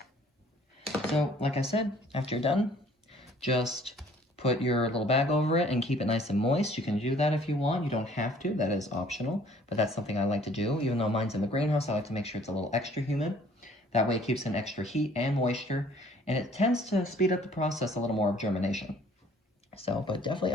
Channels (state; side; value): normal; both; correlation 0.56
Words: So like I said, after you're done, just put your little bag over it and keep it nice and moist. You can do that if you want. You don't have to. That is optional. But that's something I like to do. Even though mine's in the greenhouse, I like to make sure it's a little extra humid. That way it keeps in extra heat and moisture. And it tends to speed up the process a little more of germination. So, but definitely